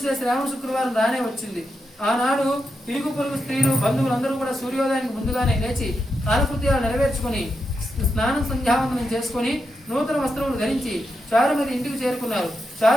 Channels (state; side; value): normal; both; correlation 0.86